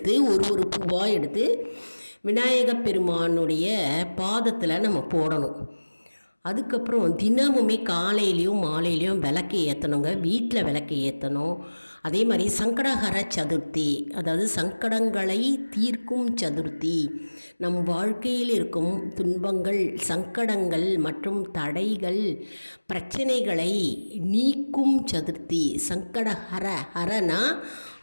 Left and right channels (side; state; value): both; inverted; correlation -1.00